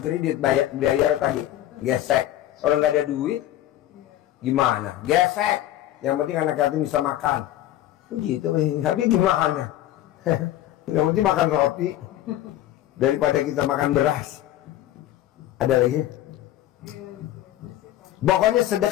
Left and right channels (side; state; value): right; quieter; 13.4 dB